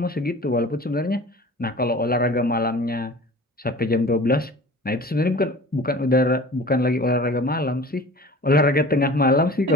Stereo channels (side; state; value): both; normal; correlation 0.42